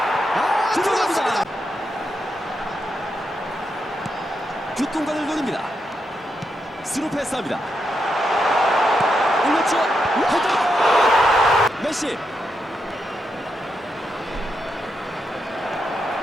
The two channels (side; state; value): both; normal; correlation 0.84